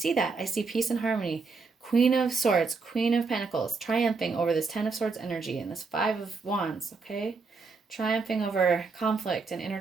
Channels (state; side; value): quieter; left; 4.4 dB